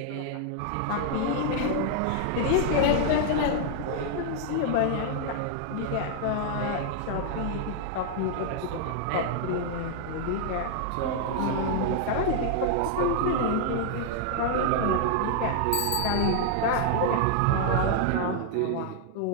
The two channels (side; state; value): both; different; correlation -0.01